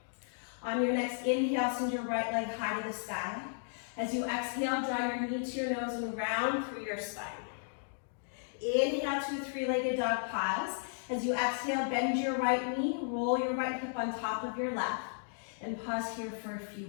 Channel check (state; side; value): silent; right; digital silence